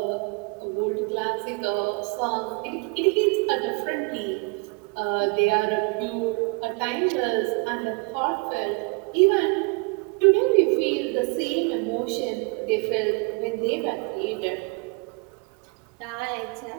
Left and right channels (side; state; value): left; quieter; 31.6 dB